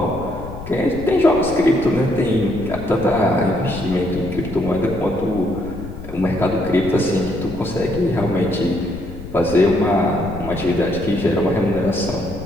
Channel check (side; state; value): left; noise; rumble, 12 dB below the sound